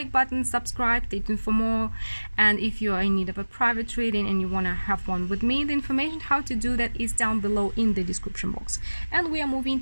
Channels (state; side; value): inverted; both; correlation -1.00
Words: button, subscribe, stay tuned for more. And if you are in need of a private reading and you want to have one with me, the information how to do that is down below in the description box. And we are moving